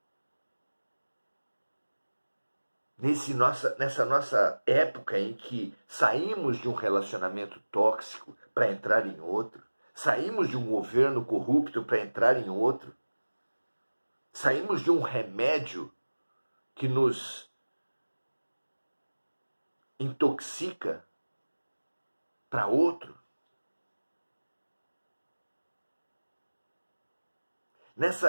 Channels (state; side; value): inverted; both; correlation -1.00